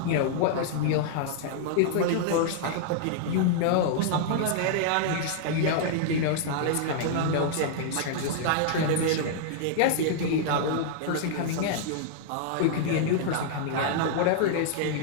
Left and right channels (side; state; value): both; different; correlation -0.01